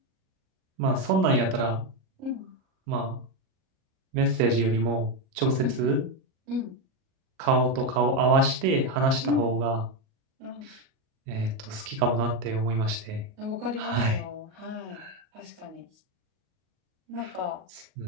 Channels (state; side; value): late; left; 38 ms